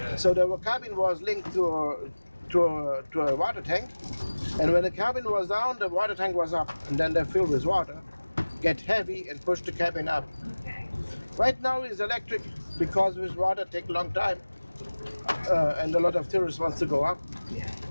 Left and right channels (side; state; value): both; inverted; correlation -1.00